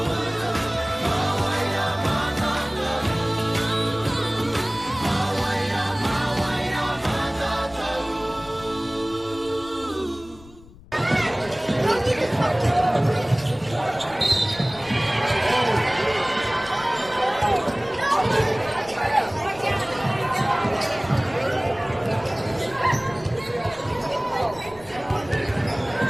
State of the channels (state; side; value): noise; left; rumble, 22 dB below the sound